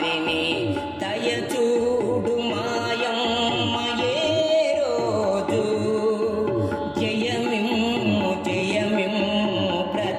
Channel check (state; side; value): identical; both; correlation 1.00